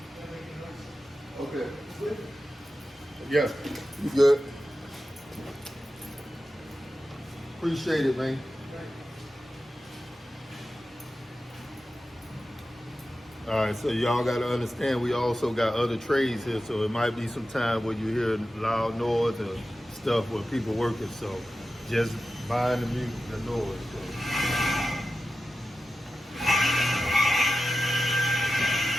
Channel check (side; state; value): both; normal; correlation 0.92